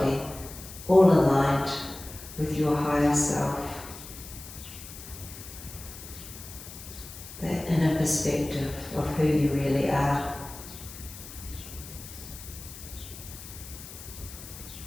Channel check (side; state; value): left; noise; hiss, 14 dB below the sound